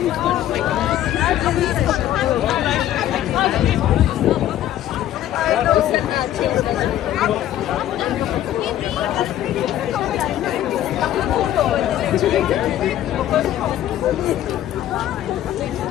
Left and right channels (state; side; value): quieter; right; 12.4 dB